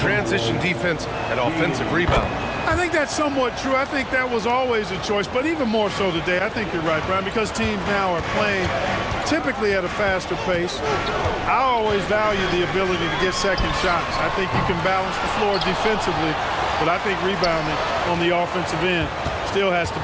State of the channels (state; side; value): identical; both; correlation 1.00